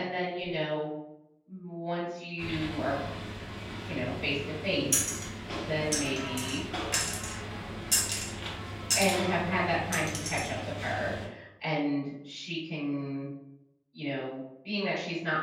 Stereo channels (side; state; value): both; identical; correlation 1.00